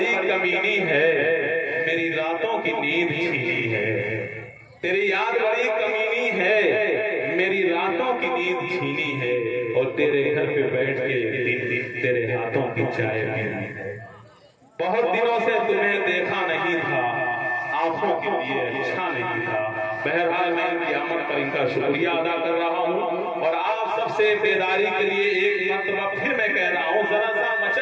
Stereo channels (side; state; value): both; identical; correlation 1.00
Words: کمینی ہے، میری راتوں کی نیند چھینی ہے، تیری یاد بڑی کمینی ہے، میری راتوں کی نیند چھینی ہے، اور تیرے گھر پہ بیٹھ کے تیرے ہاتھوں کی چائے پینی ہے۔ بہت دنوں سے تمہیں دیکھا نہیں تھا، آنکھوں کے لیے اچھا نہیں تھا۔ بہرحال میں ان کی آمد پر ان کا شکریہ ادا کر رہا ہوں، اور آپ سب سے بیداری کے لیے ایک مرتبہ پھر میں کہہ رہا ہوں، ذرا سا